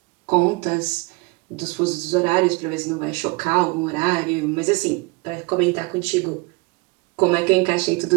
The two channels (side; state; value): left; quieter; 27.0 dB